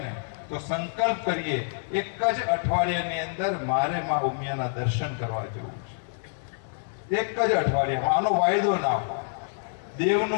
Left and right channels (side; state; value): right; silent; digital silence